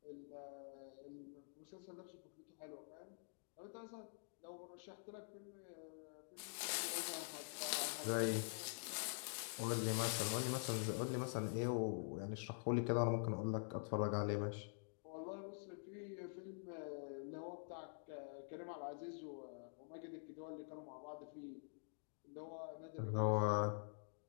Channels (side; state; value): right; silent; digital silence